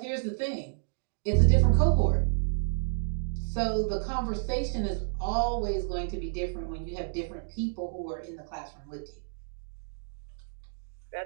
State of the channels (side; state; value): left; silent; digital silence